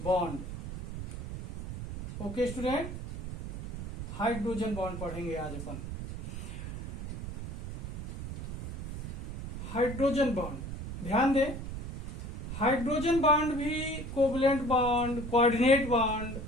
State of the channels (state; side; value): noise; right; rumble, 8 dB below the sound